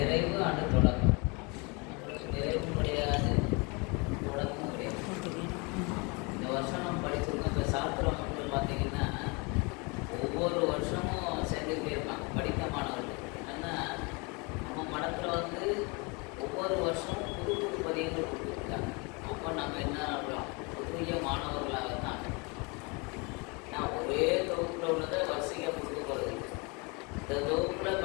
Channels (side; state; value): right; quieter; 29.8 dB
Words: ஆண்டு தொடக்கம். நிறைவு கிடையாது, தொடக்கமும் கிடையாது. இந்த வருஷம் நம்ம படிச்சிருக்கோம். இப்போ சாஸ்திர மக்கள் பார்த்தீங்கன்னா ஒவ்வொரு வருஷமும் சேர்ந்துக்கிட்டே இருப்பாங்க படித்த மாணவர்கள். ஏன்னா நம்ம மடத்தில் வந்து ஒவ்வொரு வருஷமும் புது புது பதியங்கள் கொடுத்துருக்காங்க. அப்போ நம்ம என்ன ஆகலாம், புதிய மாணவர்களாக தான். நான் ஒரே தொகுப்பில் உள்ளதை வரிசையாக கொடுக்க போகிறது. இந்த தொகுப்பில்